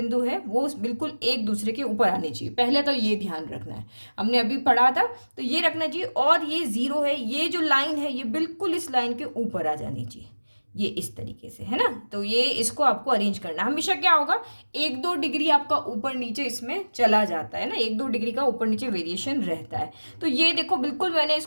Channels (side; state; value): both; inverted; correlation -1.00